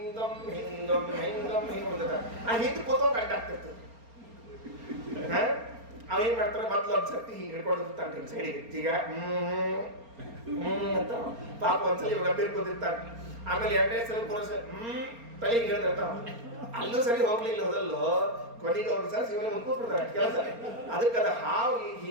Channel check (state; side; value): late; left; 4.3 ms